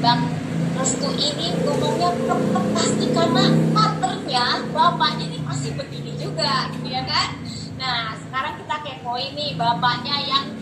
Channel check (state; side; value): identical; both; correlation 1.00